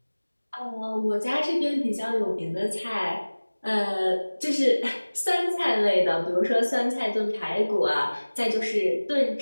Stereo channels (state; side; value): inverted; both; correlation -1.00